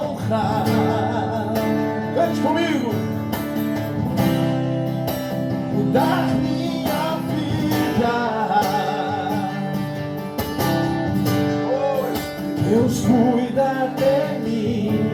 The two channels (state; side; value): identical; both; correlation 1.00